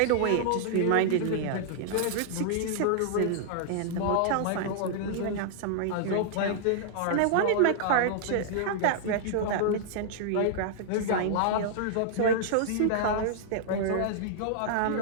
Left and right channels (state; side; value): different; both; correlation -0.01